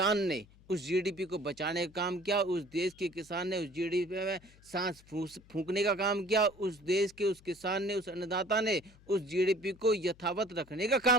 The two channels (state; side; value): noise; left; hum, 26 dB below the sound